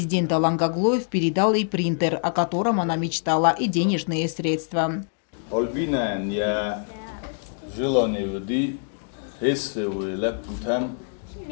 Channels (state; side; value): silent; right; digital silence